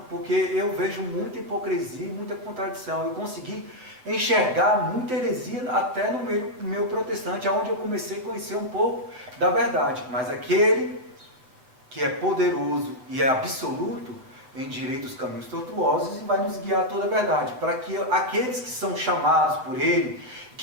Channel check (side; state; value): left; late; 7.7 ms